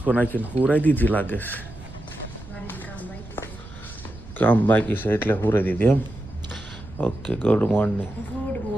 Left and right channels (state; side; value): noise; right; rumble, 16 dB below the sound